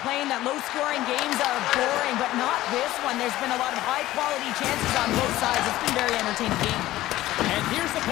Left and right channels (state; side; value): quieter; right; 15.7 dB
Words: that low-scoring games are boring, but not this one. There's been a lot of high-quality chances on both sides. It's been a very entertaining game. And here's the